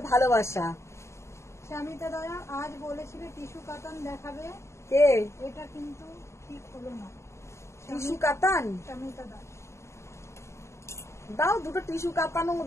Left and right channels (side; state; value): right; late; 0.14 ms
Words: ভালোবাসা। স্বামীতা দয়া আজ বলেছিল টিস্যু কাতান দেখাবে, কে? এটা কিন্তু ঠিক হলো না। টিস্যু কাতান স্বামীতা দাস, দাও, দুটো টিস্যু কাতানো